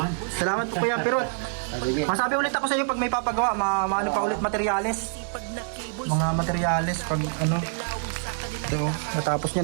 Salamat po Kuya Pirot. Masabi ulit ako sa iyo pag may papagawa, maano pa ulit materyales. Mga materyales pag ano. Ito, natapos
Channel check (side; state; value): left; silent; 61 dB below the other